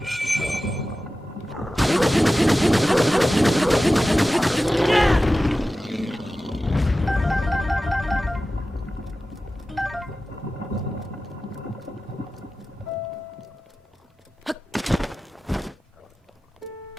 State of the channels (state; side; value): normal; both; correlation 0.94